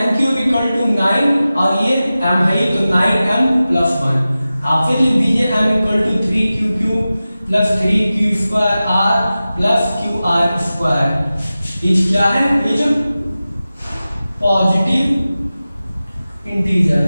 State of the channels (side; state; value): both; inverted; correlation -0.95